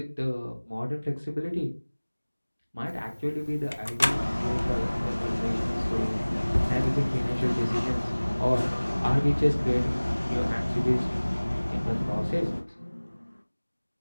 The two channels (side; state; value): both; inverted; correlation -1.00